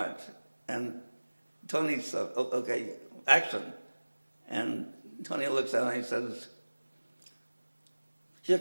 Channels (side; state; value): both; inverted; correlation -1.00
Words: And Tony said, "Okay, action." And Tony looks at me and he says, "Here